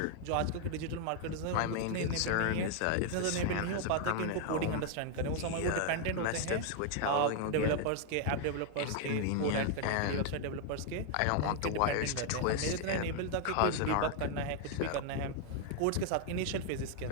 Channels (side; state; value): both; different; correlation 0.00